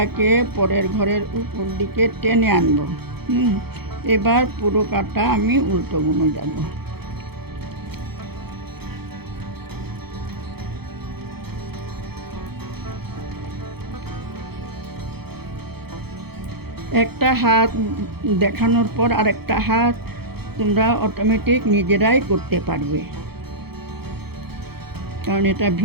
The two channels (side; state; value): left; late; 0.96 ms